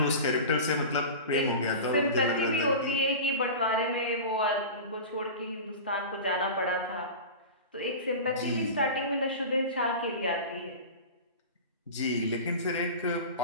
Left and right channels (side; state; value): both; inverted; correlation -0.31